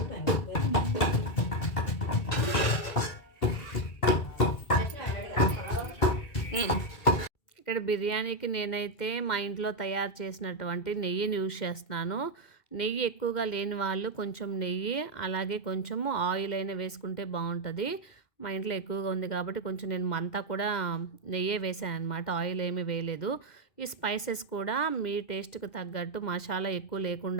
ఇక్కడ బిర్యానీకి నేనైతే మా ఇంట్లో తయారు చేసినటువంటి నెయ్యిని యూజ్ చేస్తున్నాను. నెయ్యి ఎక్కువగా లేని వాళ్ళు కొంచెం నెయ్యి అలాగే కొంచెము ఆయిల్ అయినా వేసుకుంటే బాగుంటుంది. మా ఇంట్లో ఎక్కువగా ఉంది కాబట్టి కొంచెం నేను అంతా కూడా నెయ్యే వేసాను అనమాట. ఆయిల్ ఏమీ వేయలేదు. ఈ స్పైసెస్ కూడా మీ టేస్ట్కి తగ్గట్టు మసాలా ఎక్కువ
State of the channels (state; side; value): late; right; 2.0 ms